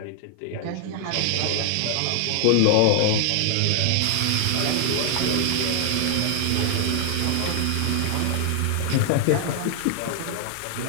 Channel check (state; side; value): different; both; correlation 0.00